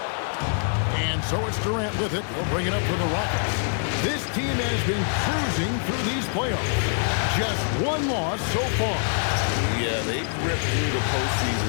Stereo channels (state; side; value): silent; right; digital silence